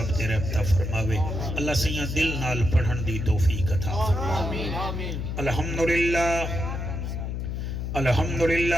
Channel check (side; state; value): left; noise; hum, 3 dB below the sound